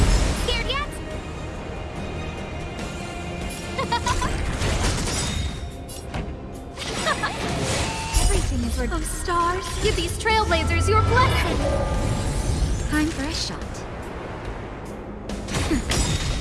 Scared yet? Everything is worth. Oh, stars, give these trailblazers your blessing. Time for a shot.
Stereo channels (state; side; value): identical; both; correlation 1.00